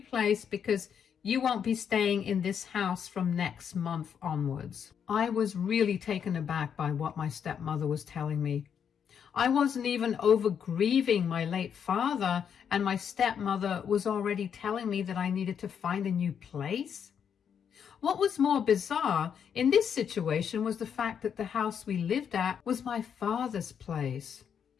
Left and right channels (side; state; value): right; quieter; 7.8 dB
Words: place because you won't be staying in this house from next month onwards. I was really taken aback by what my stepmother was telling me. I wasn't even over grieving my late father, and my stepmother was already telling me that I needed to find a new place. What was more bizarre in this situation was the fact that the house we lived at was my father's place.